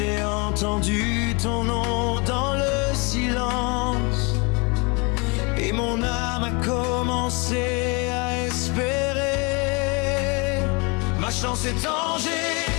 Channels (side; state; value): right; quieter; 30.3 dB